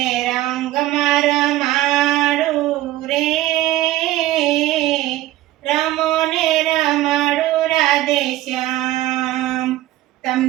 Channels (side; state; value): left; quieter; 15.6 dB